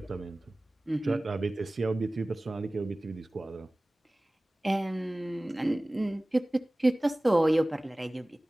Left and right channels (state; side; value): normal; both; correlation 0.98